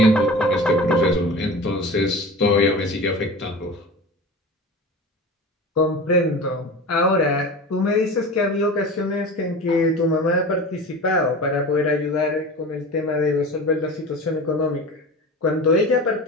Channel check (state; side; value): normal; both; correlation 0.33